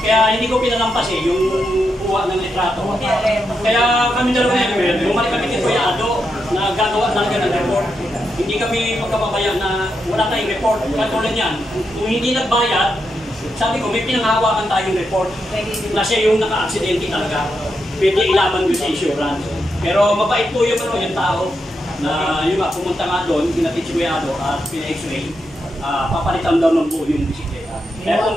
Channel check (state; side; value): normal; both; correlation 0.84